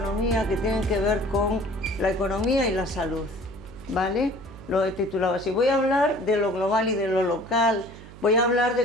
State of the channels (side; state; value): right; noise; hum, 17 dB below the sound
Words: que tienen que ver con la economía y la salud, ¿vale? Lo he titulado así. Voy a hablar de lo global y de lo local, voy a hablar